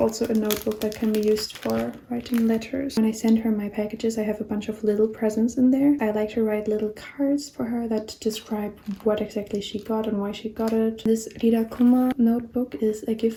a notebook that can be used for writing letters. When I send her my packages, I have a bunch of little presents in there. I like to write little cards for her that describe what exactly she got and why she got it. This Rirakuma notebook is a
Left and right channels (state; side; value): identical; both; correlation 1.00